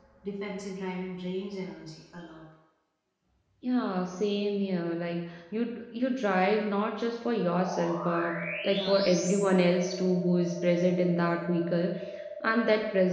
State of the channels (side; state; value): both; identical; correlation 1.00